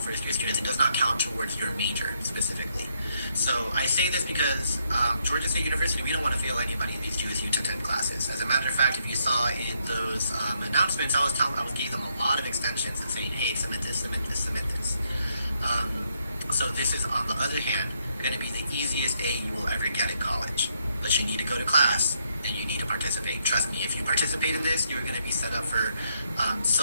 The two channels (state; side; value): inverted; both; correlation -0.75